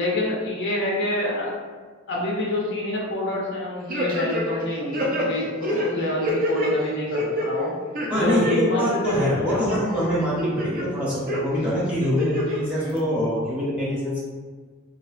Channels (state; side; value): normal; both; correlation 0.34